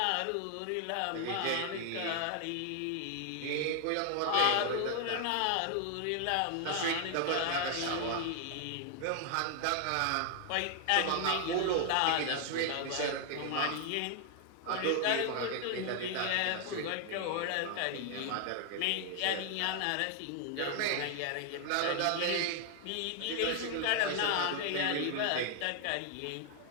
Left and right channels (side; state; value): both; different; correlation 0.00